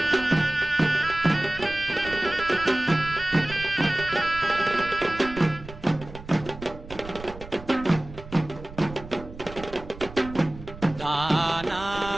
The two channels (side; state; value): right; noise; rumble, 15 dB below the sound